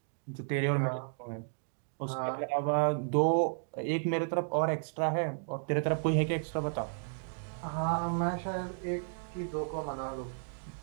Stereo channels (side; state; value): left; silent; digital silence